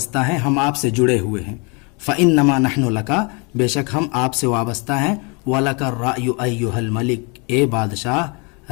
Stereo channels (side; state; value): right; quieter; 31.9 dB